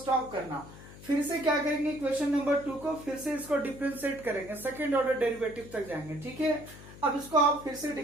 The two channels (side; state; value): left; noise; hum, 17 dB below the sound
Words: करना। फिर से क्या करेंगे, इक्वेशन नंबर 2 को फिर से इसको डिफरेंशिएट करेंगे, सेकंड ऑर्डर डेरिवेटिव तक जाएंगे, ठीक है। अब इसको आप फिर से